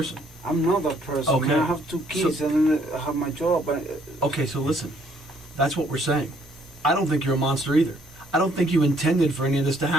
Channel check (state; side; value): normal; both; correlation 0.65